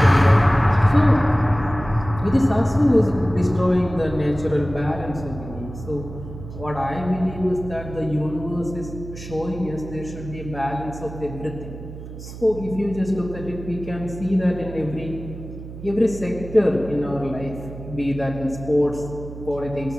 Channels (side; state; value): right; noise; hum, 12 dB below the sound